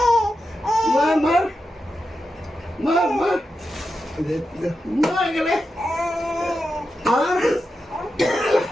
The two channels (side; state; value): both; normal; correlation 0.89